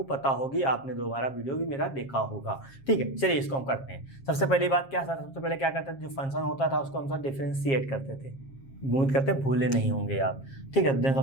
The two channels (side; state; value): right; late; 7.4 ms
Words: पता होगी, आपने दोबारा वीडियो भी मेरा देखा होगा, ठीक है। चलिए इसको हम करते हैं। सबसे पहली बात क्या सर, सबसे पहले क्या करते थे, जो फंक्शन होता था उसको हम सर डिफरेंशिएट करते थे, उम्मीद करते हैं भूले नहीं होंगे आप। ठीक है, देन